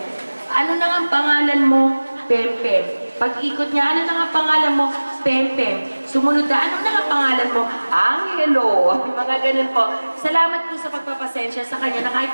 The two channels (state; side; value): inverted; both; correlation -1.00